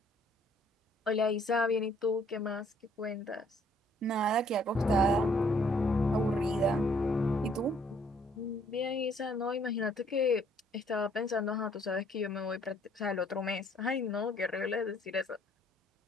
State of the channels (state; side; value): normal; both; correlation 0.63